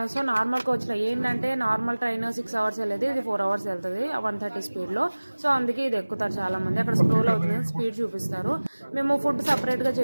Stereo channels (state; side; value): inverted; both; correlation -1.00